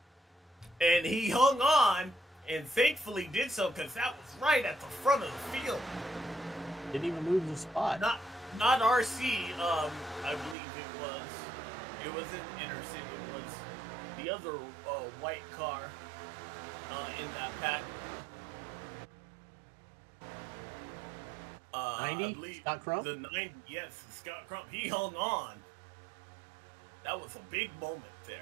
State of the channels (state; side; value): drops out; left; at 10.6 s